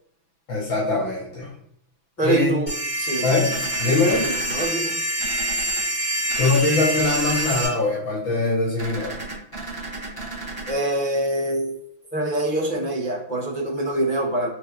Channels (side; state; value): right; late; 6.0 ms